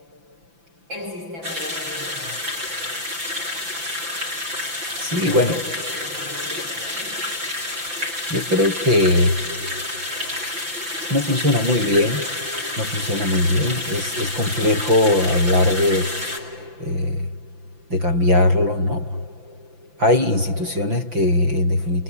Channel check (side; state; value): left; late; 5.9 ms